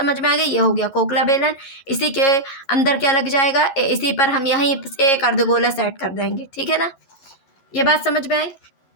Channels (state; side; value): late; right; 11 ms